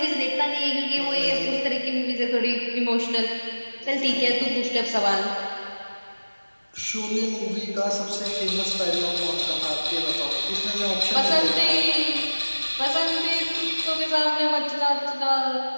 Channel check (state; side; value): inverted; both; correlation -1.00